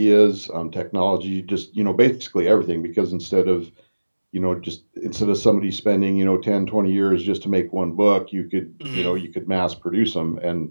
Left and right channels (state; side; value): inverted; both; correlation -1.00